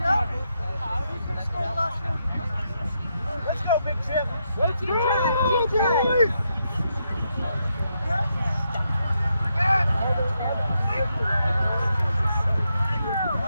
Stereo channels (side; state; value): both; inverted; correlation -0.81